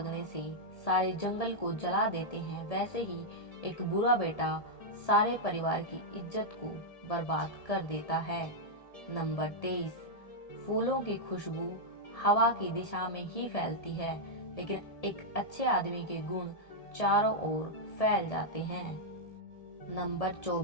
से सारे जंगल को जला देते हैं, वैसे ही एक बुरा बेटा सारे परिवार की इज्जत को बर्बाद कर देता है। नंबर 23, फूलों की खुशबू हवा की दिशा में ही फैलती है, लेकिन एक अच्छे आदमी के गुण चारों ओर फैल जाते हैं। नंबर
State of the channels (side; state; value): right; late; 1.7 ms